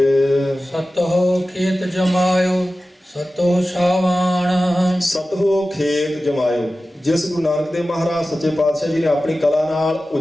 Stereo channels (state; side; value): normal; both; correlation 0.95